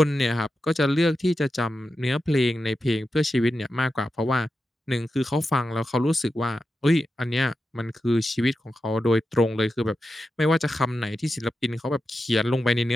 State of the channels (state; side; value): normal; both; correlation 0.90